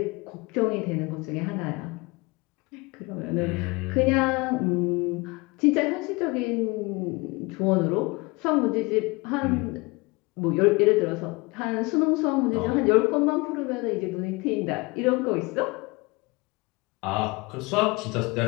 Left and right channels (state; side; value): quieter; right; 25.2 dB